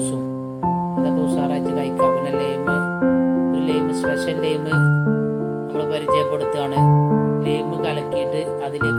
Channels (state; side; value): identical; both; correlation 1.00